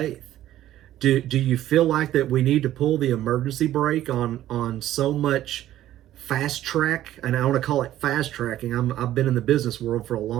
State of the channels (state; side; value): quieter; left; 13.2 dB